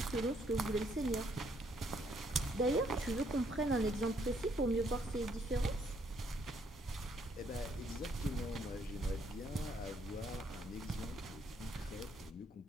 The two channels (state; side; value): normal; both; correlation 0.69